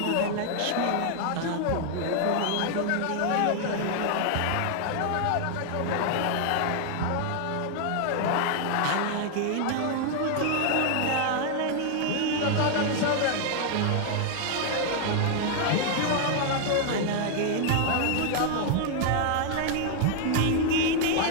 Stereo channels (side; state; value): both; different; correlation 0.00